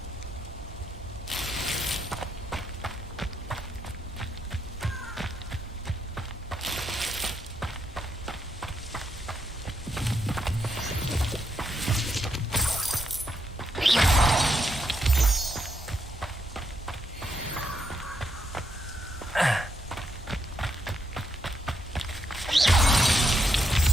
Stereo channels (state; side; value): normal; both; correlation 0.79